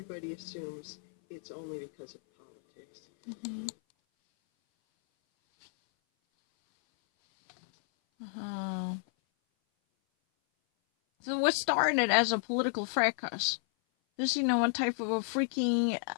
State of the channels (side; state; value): right; silent; 57 dB below the other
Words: assumes it's only because of politics. Mm-hmm. So what started as a political fracas, this, one type of a freaking